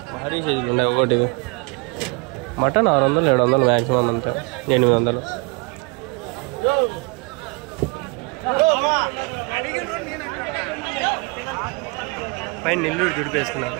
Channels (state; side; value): quieter; left; 30.5 dB